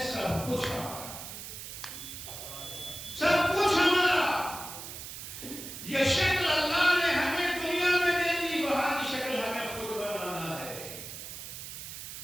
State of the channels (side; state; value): right; noise; hiss, 10 dB below the sound